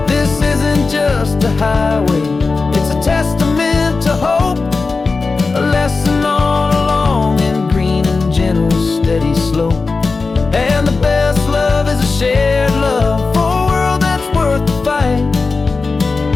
This isn't just a highway, it's a testament to hope, a lesson on a long and green and gentle steady slope. And the best love is a shared love for a world that's worth the fight,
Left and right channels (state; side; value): quieter; right; 4.1 dB